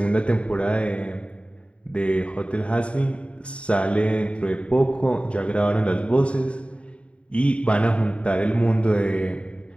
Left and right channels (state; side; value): late; right; 0.060 ms